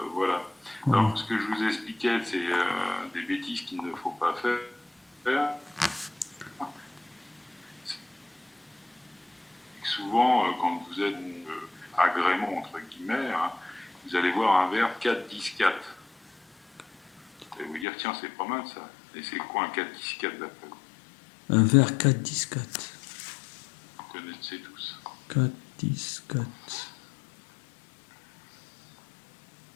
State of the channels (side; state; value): right; drops out; at 17.9 s